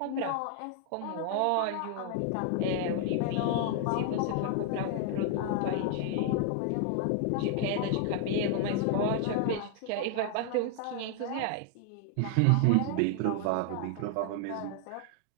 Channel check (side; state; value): both; different; correlation 0.00